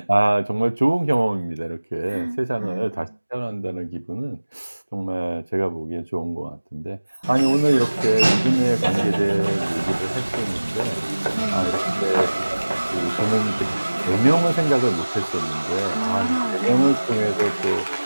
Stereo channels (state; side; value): inverted; both; correlation -1.00